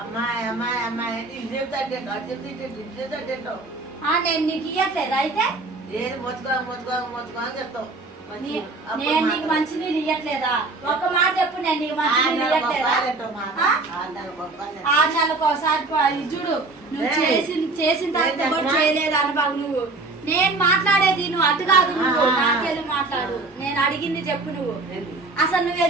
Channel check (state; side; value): quieter; left; 3.4 dB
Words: నేను నీకు ఇయ్యట్లేదు అయితే? నేను నీకు మంచినీళ్ళు ఇయ్యట్లేదా? ఒక మాట చెప్పు, నేను నీకు మంచినీళ్ళు ఇయ్యట్లేదా? 6 నెలలకు ఒకసారి చూడు. నువ్వు చేసిన తర్వాత కూడా చేయలేదు అనుభవం. నువ్వు నేను మాట్లాడేది నువ్వు అటు కాదు, నువ్వు నాకెళ్ళి మాట్లాడు. నేను అడిగింది చెప్పు. నువ్వు అసలు నువ్వు